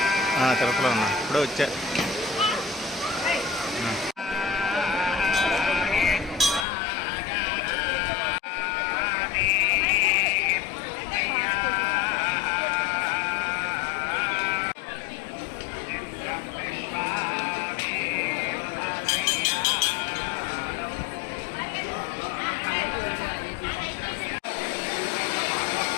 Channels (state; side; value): drops out; right; at 6.7 s